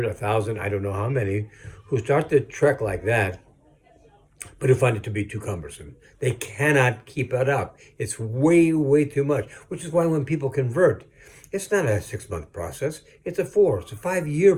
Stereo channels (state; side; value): identical; both; correlation 1.00